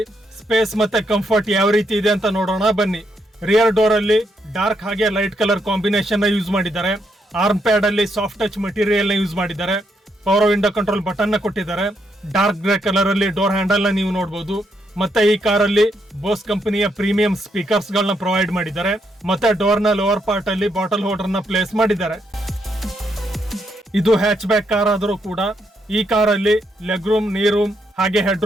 ಸ್ಪೇಸ್ ಮತ್ತೆ ಕಂಫರ್ಟ್ ಯಾವ ರೀತಿ ಇದೆ ಅಂತ ನೋಡೋಣ ಬನ್ನಿ. ರಿಯರ್ ಡೋರ್ ಅಲ್ಲಿ ಡಾರ್ಕ್ ಹಾಗೆ ಲೈಟ್ ಕಲರ್ ಕಾಂಬಿನೇಷನ್ ನ ಯೂಸ್ ಮಾಡಿದ್ದಾರೆ. ಆರ್ಮ್ ಪ್ಯಾಡ್ ಅಲ್ಲಿ ಸಾಫ್ಟ್ ಟಚ್ ಮೆಟೀರಿಯಲ್ ನ ಯೂಸ್ ಮಾಡಿದ್ದಾರೆ. ಪವರ್ ವಿಂಡೋ ಕಂಟ್ರೋಲ್ ಬಟನ್ ನ ಕೊಟ್ಟಿದ್ದಾರೆ. ಡಾರ್ಕ್ ಗ್ರೇ ಕಲರ್ ಅಲ್ಲಿ ಡೋರ್ ಹ್ಯಾಂಡಲ್ ನ ನೀವು ನೋಡಬಹುದು. ಮತ್ತೆ ಈ ಕಾರಲ್ಲಿ ಬೋಸ್ ಕಂಪನಿಯ ಪ್ರೀಮಿಯಂ ಸ್ಪೀಕರ್ಸ್ ಗಳನ್ನ ಪ್ರೊವೈಡ್ ಮಾಡಿದ್ದಾರೆ. ಮತ್ತೆ ಡೋರ್ ನ ಲೋವರ್ ಪಾರ್ಟ್ ಅಲ್ಲಿ ಬಾಟಲ್ ಹೋಲ್ಡರ್ ನ ಪ್ಲೇಸ್ ಮಾಡಿದ್ದಾರೆ. ಇದು ಹ್ಯಾಚ್ ಬ್ಯಾಕ್ ಕಾರ್ ಆದರೂ ಕೂಡ ಈ ಕಾರಲ್ಲಿ ಲೆಗ್ ರೂಮ್, ನೀ ರೂಮ್ ಹಾಗೆ ಹೆಡ್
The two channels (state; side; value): normal; both; correlation 0.77